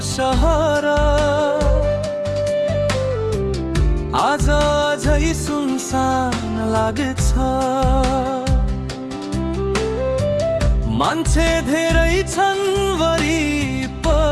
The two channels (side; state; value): both; identical; correlation 1.00